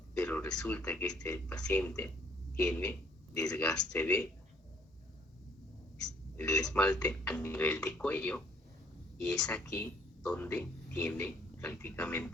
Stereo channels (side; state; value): both; normal; correlation 0.62